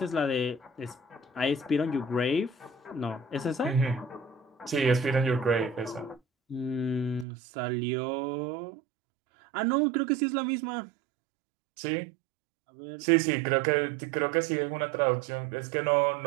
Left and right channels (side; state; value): left; drops out; at 7.2 s